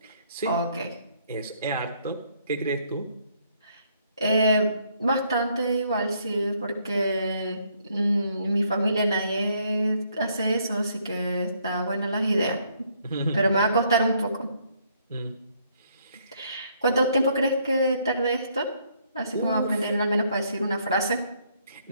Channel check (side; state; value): both; inverted; correlation -0.69